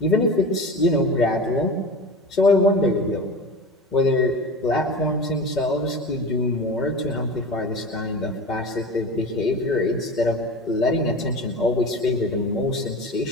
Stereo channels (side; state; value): both; normal; correlation 0.31